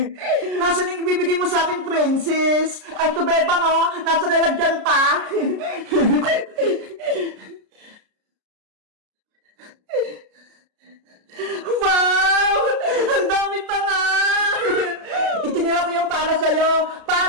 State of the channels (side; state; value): left; late; 33 ms